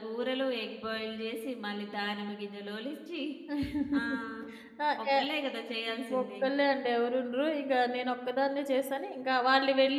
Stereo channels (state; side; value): identical; both; correlation 1.00